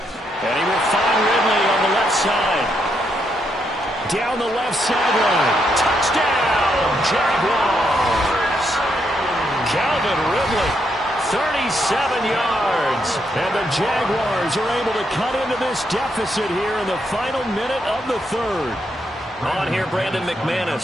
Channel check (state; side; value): normal; both; correlation 0.78